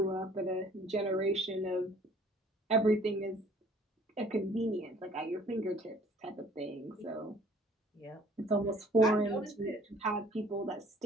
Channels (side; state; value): both; normal; correlation 0.55